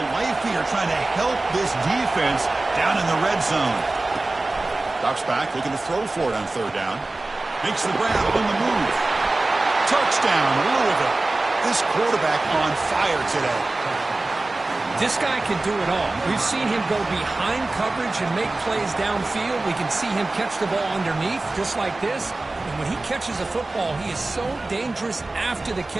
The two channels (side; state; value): left; quieter; 3.0 dB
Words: life here, trying to help this defense down in the red zone. Drops back, looking to throw for it on third down. Makes the grab on the move. Touchdown, Louisville. This quarterback on fire today. This guy can do it all. We've seen him go behind coverage and make plays downfield. We can see him catch the ball underneath, just like this. And when he catches a football, he is so dangerous after the